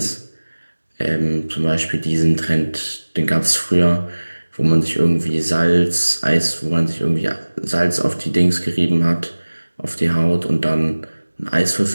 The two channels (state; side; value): inverted; both; correlation -1.00